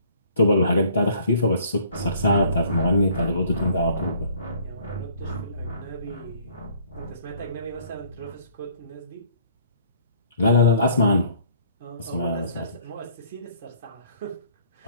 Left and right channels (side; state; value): both; inverted; correlation -0.57